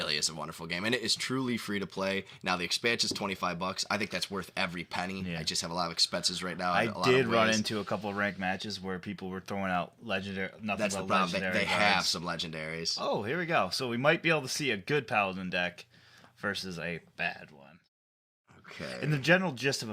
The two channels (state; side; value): identical; both; correlation 1.00